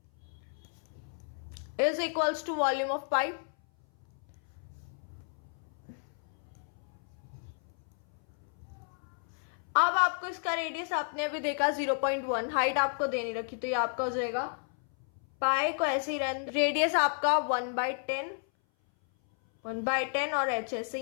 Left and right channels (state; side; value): silent; right; 56 dB below the other